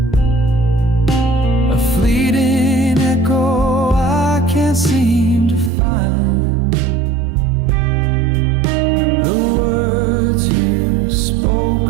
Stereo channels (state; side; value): drops out; left; at 5.7 s